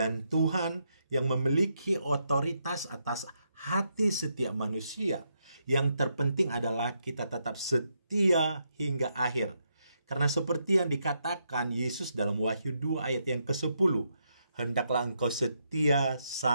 Tuhan yang memiliki otoritas atas hati setiap manusia. Yang terpenting adalah kita tetap setia hingga akhir. Karena seperti yang dikatakan Yesus dalam Wahyu 2 ayat yang ke-10, "Hendaklah engkau setia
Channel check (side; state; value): both; inverted; correlation -0.79